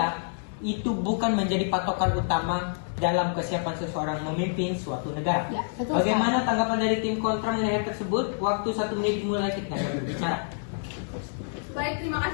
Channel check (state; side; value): silent; right; digital silence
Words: itu bukan menjadi patokan utama dalam kesiapan seseorang memimpin suatu negara. Ya, betul Bagaimana tanggapan dari tim kontra mengenai hal tersebut? Waktu 1 menit dimulai kita berbicara. Baik, terima